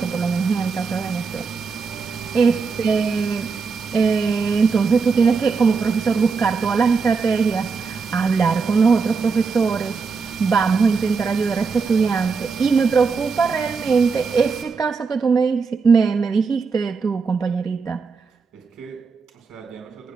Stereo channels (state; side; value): quieter; left; 5.1 dB